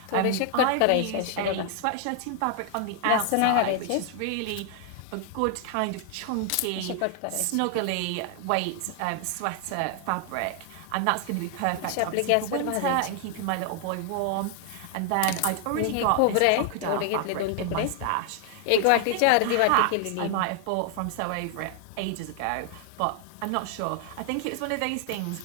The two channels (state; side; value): different; both; correlation 0.00